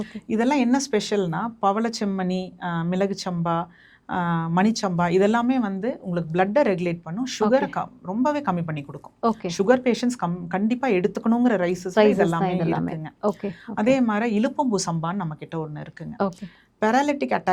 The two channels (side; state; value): both; identical; correlation 1.00